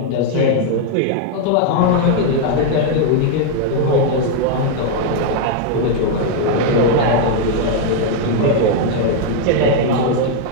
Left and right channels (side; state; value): both; different; correlation 0.00